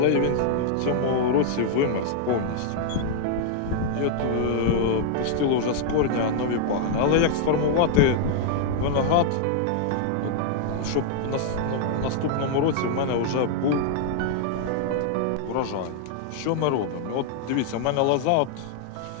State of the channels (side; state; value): both; different; correlation -0.01